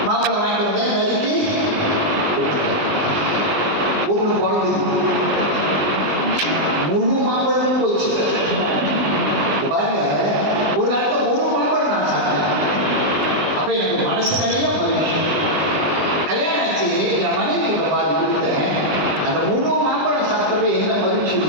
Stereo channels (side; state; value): left; late; 20 ms